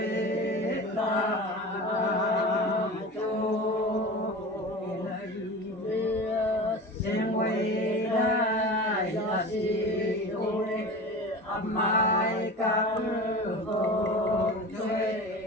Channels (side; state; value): both; normal; correlation 0.32